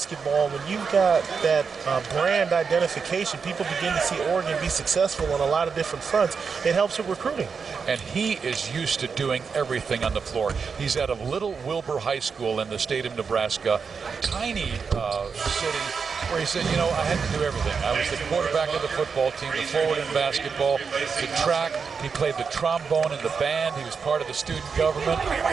When you've got that brand identification, people begin to see Oregon be successful on a lot of different fronts. It helps with recruiting. And he is used to doing everything on the floor. He's out of Little Wilbur High School in the state of Nebraska, tiny city, where he said, you know, I had to do everything. I was the quarterback of the football team, the forward in basketball, the track. He played the trombone in the band. He was part of the student government.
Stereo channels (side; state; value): left; quieter; 5.7 dB